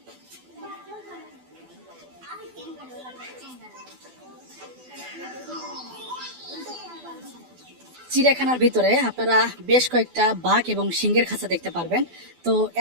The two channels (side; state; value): left; late; 12 ms